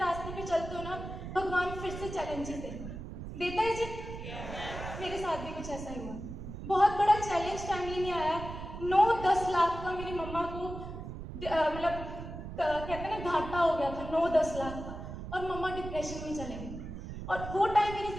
पे चलते हो ना, भगवान फिर से चैलेंजेस देता है जी। मेरे साथ भी कुछ ऐसा ही हुआ। बहुत बड़ा चैलेंज फैमिली में आया, 9-10 लाख का मेरी मम्मा को मतलब कहते हैं ना घाटा हो गया था, 9-10 लाख का, और मम्मा डिप्रेशन में चले गए। और वो टाइम मेरी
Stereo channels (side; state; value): right; noise; rumble, 9 dB below the sound